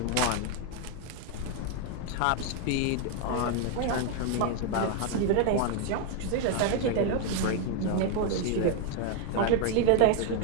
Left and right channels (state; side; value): different; both; correlation 0.01